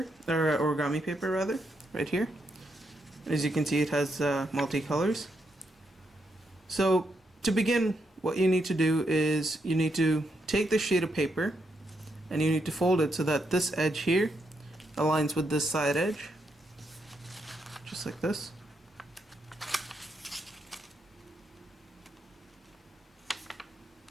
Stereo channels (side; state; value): both; normal; correlation 0.80